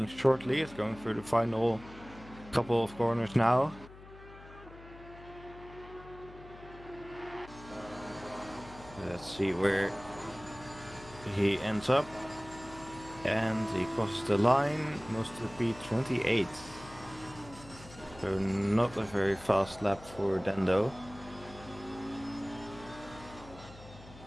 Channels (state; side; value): noise; left; hum, 18 dB below the sound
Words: shortly. It's going through the final couple of corners now. Let's see where he ends up. And he crosses the line, moves to P28. So not a very fast lap for Dendo.